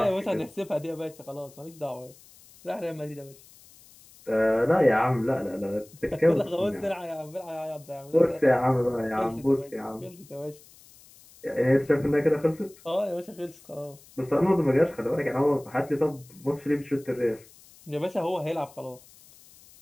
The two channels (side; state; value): left; noise; hiss, 24 dB below the sound